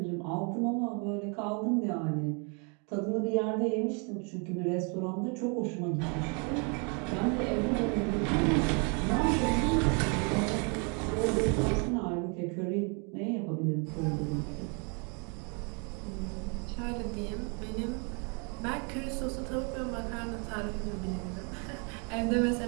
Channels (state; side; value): quieter; left; 35.3 dB